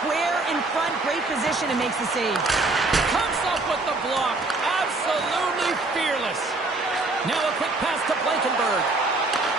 square in front. Great position and makes the save. Comes up with the block. Absolutely fearless. Now a quick pass to Blankenberg.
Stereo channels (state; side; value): quieter; left; 3.2 dB